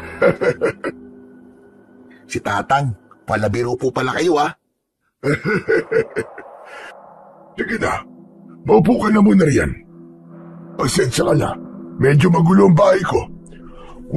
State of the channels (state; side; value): identical; both; correlation 1.00